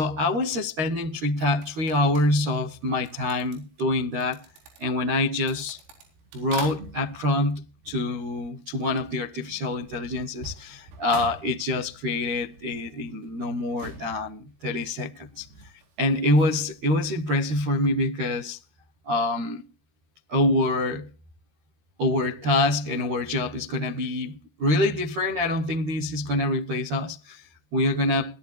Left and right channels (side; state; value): left; late; 13 ms